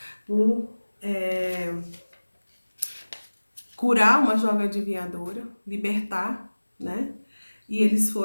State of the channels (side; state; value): both; inverted; correlation -1.00